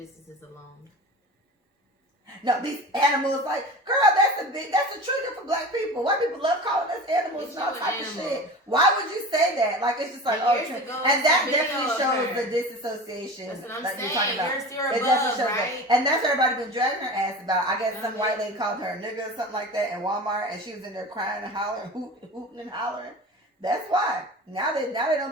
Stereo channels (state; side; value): normal; both; correlation 0.34